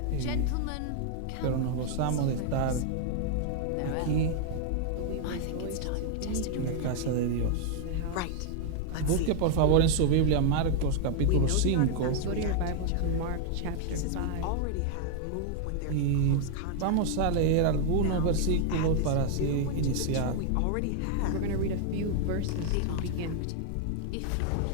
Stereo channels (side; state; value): both; different; correlation 0.00